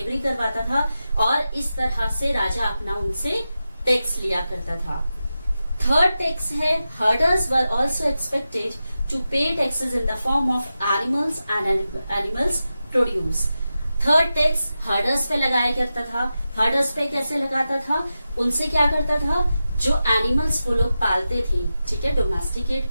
था, और इस तरह से राजा अपना उनसे टैक्स लिया करता था। थर्ड टैक्स है, herders were also expected to pay taxes in the form of animals and animals produce. Third tax herders पे लगाया करता था। हर्डर्स पे कैसे लगाता था? उनसे क्या करता था? जो एनिमल्स वो लोग पालते थे, ठीक है, डोमेस्टिकेट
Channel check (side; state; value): both; inverted; correlation -0.92